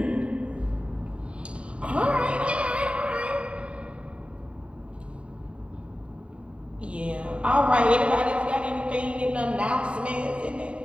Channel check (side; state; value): left; late; 0.060 ms